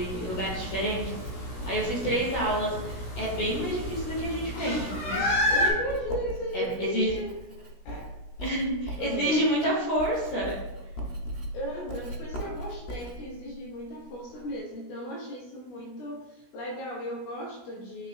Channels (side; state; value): right; late; 16 ms